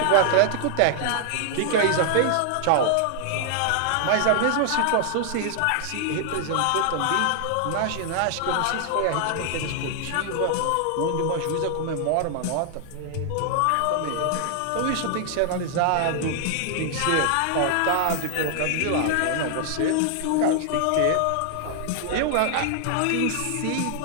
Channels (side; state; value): both; different; correlation 0.00